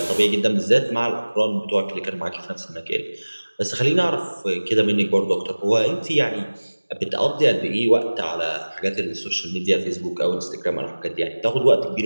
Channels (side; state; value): both; inverted; correlation -1.00